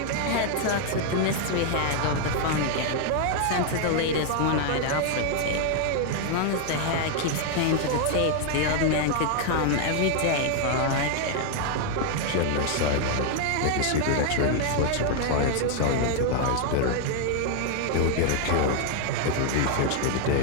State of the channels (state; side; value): different; both; correlation 0.00